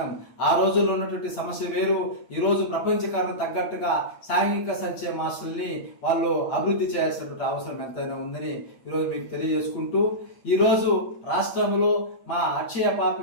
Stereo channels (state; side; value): late; right; 8.6 ms